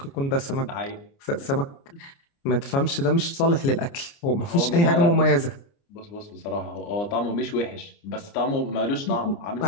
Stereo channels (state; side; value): late; right; 29 ms